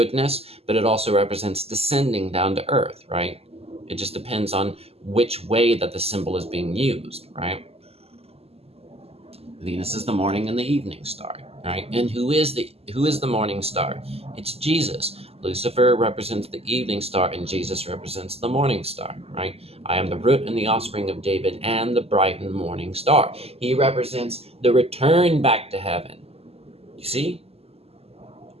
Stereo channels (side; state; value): left; late; 0.29 ms